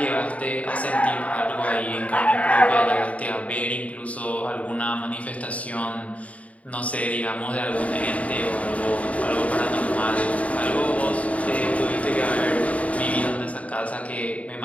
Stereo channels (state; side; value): late; right; 0.067 ms